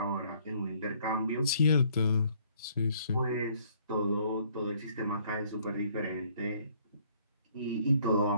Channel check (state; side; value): inverted; both; correlation -0.63